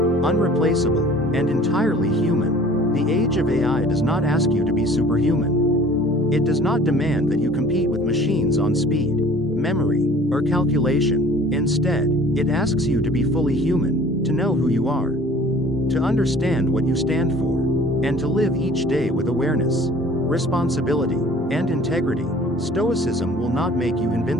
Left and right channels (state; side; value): normal; both; correlation 0.49